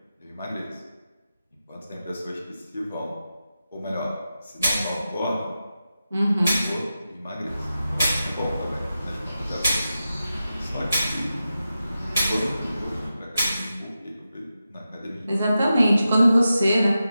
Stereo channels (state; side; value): inverted; both; correlation -0.91